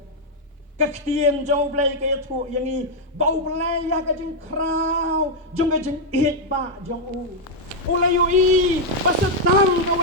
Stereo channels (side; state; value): both; normal; correlation -0.01